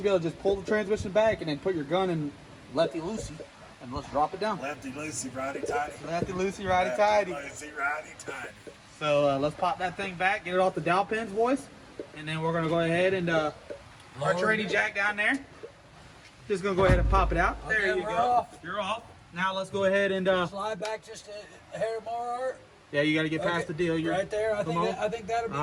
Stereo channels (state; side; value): identical; both; correlation 1.00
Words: be able to just pull the transmission back and then put your gun in lefty loosey and let's drop it down. Lefty loosey, righty tighty. Lefty loosey, righty tighty. Lefty loosey, righty tighty. So let's pop that thing back, get it off the dowel pins, boys, and then we're gonna go ahead and our tranny jack down there. Just gonna go ahead and pop it out. Okay, There you we're go. off. You're off. Now let's go ahead and Slide back just a hair more, Art. yeah, you got to get past Okay, the deal. You're right there. I come on. think that'll be